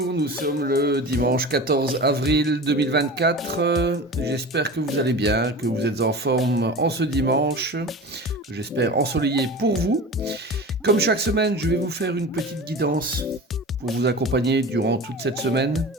nous sommes le dimanche 14 avril 2024. J'espère que vous allez bien, que vous êtes en forme en ce dimanche, que j'espère ensoleillé pour vous. Comme chaque semaine, je vais vous faire une petite guidance pour vous accompagner durant toute cette semaine.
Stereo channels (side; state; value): both; normal; correlation 0.33